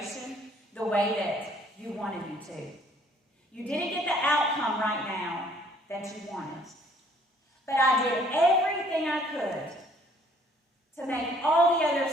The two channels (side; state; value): both; normal; correlation 0.60